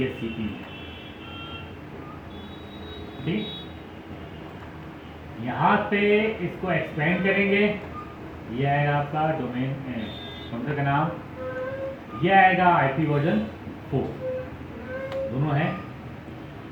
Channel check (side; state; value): both; identical; correlation 1.00